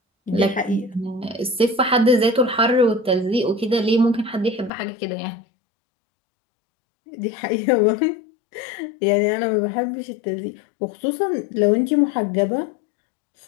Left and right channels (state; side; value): drops out; right; at 4.7 s